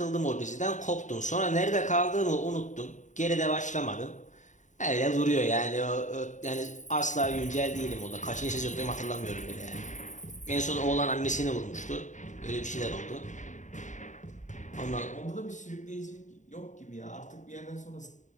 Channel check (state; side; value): late; right; 0.36 ms